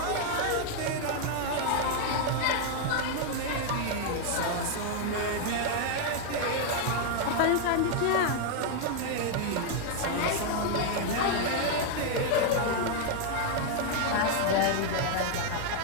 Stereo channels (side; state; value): both; different; correlation 0.00